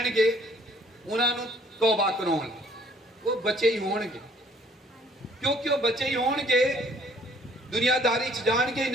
ਉਹਨਾਂ ਨੂੰ ਤੌਬਾ ਕਰਾਉਣ। ਉਹ ਬੱਚੇ ਹੀ ਹੋਣਗੇ, ਕਿਉਂਕਿ ਉਹ ਬੱਚੇ ਹੀ ਹੋਣਗੇ, ਦੁਨੀਆਦਾਰੀ 'ਚ ਜਾਣਗੇ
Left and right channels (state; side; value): normal; both; correlation 0.60